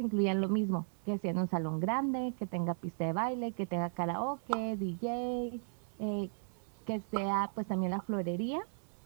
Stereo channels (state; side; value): silent; left; 54 dB below the other